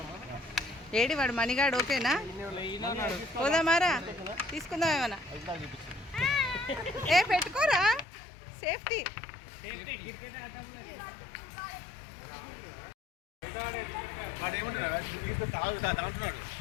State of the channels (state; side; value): drops out; right; at 8.1 s